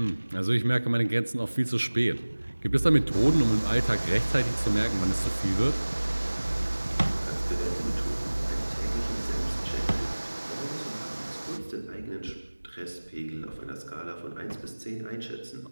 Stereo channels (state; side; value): inverted; both; correlation -1.00